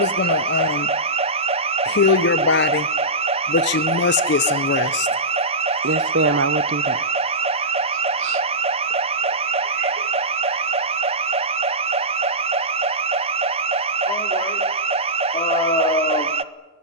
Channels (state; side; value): normal; both; correlation -0.16